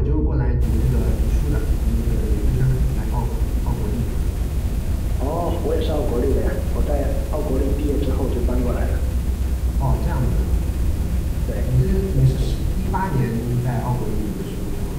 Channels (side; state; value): both; identical; correlation 1.00